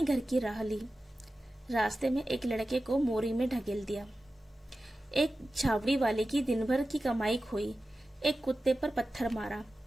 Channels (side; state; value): both; normal; correlation 0.94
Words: घर की राह ली। रास्ते में एक लड़के को मोरी में ढकेल दिया। एक छावड़ी वाले की दिन भर की कमाई खोई। एक कुत्ते पर पत्थर मारा